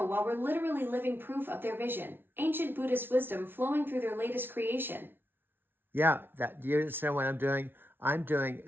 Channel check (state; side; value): late; left; 0.10 ms